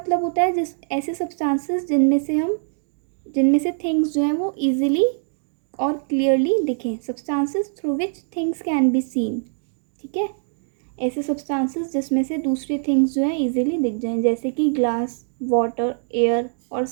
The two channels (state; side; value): silent; left; digital silence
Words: होता है जिस ऐसे सब्सटेंसेस जिनमें से थिंग्स जो हैं वो इजीली और क्लियरली दिखें. Substances through which things can be seen. ठीक है, ऐसे सब्सटेंसेस जिसमें से दूसरी थिंग्स जो हैं इजीली दिख जाएं, जैसे कि ग्लास, वाटर, एयर और